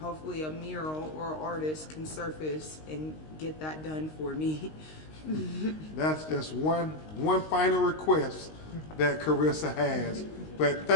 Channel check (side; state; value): right; late; 19 ms